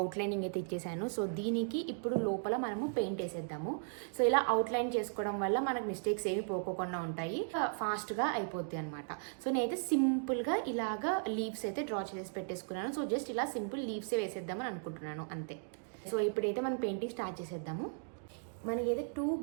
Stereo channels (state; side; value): silent; left; digital silence